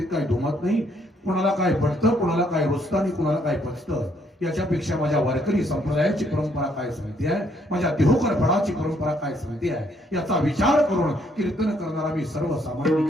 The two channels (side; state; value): both; normal; correlation 0.69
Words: काही दुमत नाही. कोणाला काय पडतं, कोणाला काय रुचतं आणि कोणाला काय पचतं याच्यापेक्षा माझ्या वारकरी संप्रदायाची परंपरा काय सांगते आहे, माझ्या देहोकर फळाची परंपरा काय सांगते आहे याचा विचार करून कीर्तन करणारा मी सर्वसामान्य